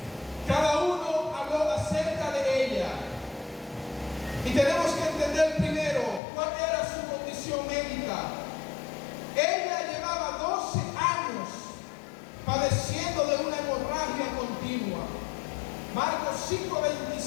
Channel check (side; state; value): right; drops out; at 6.2 s